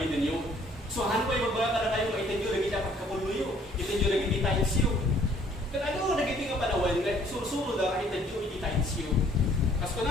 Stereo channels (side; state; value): both; normal; correlation 0.60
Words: ninyo. So han ko magbaga kada kayo itinyo lagi dapat kapuluyo, itinyo lagi iti tainsiyo. Kaya ano nagiti nga panawan, susuro da itinyo iti tainsiyo. Kas ko